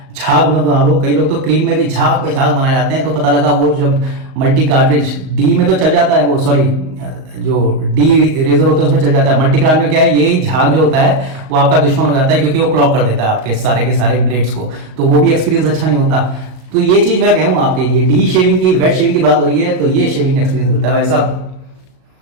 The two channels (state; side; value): late; left; 38 ms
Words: झाग मत बना लो। कई लोग तो क्रीम में भी झाग पे झाग बनाए जाते हैं, तो पता लगा वो जब मल्टी कार्ट्रिज डी में तो चल जाता है, वो सॉरी जो डी रेजर होता है उसमें चल जाता है। मल्टी कार्ट में क्या है, यही झाग जो होता है वो आपका दुश्मन हो जाता है, क्योंकि वो क्लॉक कर देता है आपके सारे के सारे ब्लेड्स को, तो वो भी एक्सपीरियंस अच्छा नहीं होता। तो ये चीज़ मैं कहूँ आपके, ये डी शेविंग की, वेट शेविंग की बात हो रही है, तो ये शेविंग एक्सपीरियंस मिलता है भाई साहब।